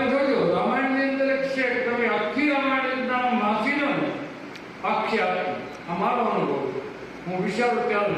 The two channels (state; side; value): identical; both; correlation 1.00